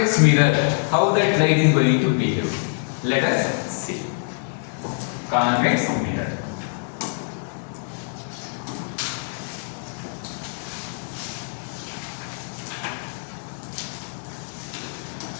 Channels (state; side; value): silent; right; 62 dB below the other